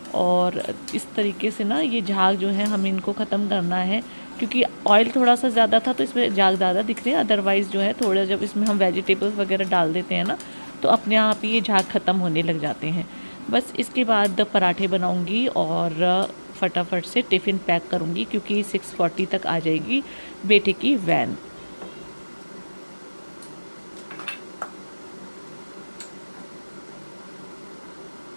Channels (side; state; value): both; inverted; correlation -1.00